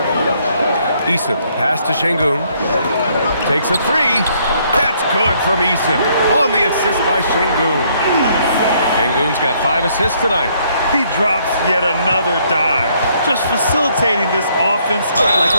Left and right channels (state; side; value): inverted; both; correlation -0.68